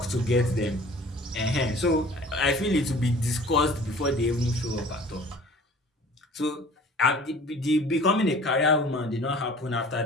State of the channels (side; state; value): both; normal; correlation 0.47